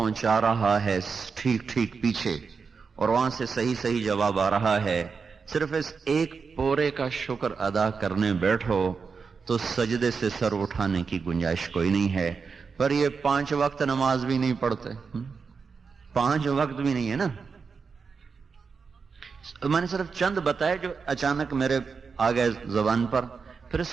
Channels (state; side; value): quieter; left; 5.3 dB